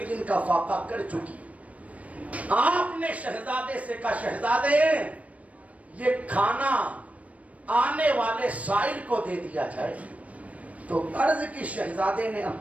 دن کا فاقہ کر چکی. آپ نے شہزادے سے کہا شہزادے یہ کھانا آنے والے سائل کو دے دیا جائے. تو عرض کی شہزادے نے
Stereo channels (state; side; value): late; left; 0.067 ms